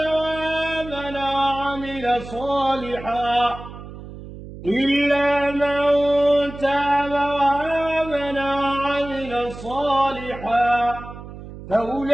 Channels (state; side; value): noise; right; hum, 13 dB below the sound